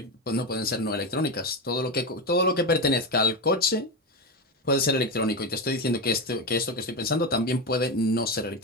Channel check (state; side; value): normal; both; correlation 0.15